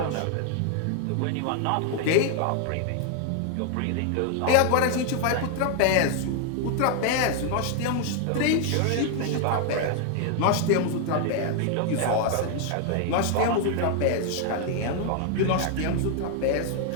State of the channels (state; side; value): different; both; correlation 0.00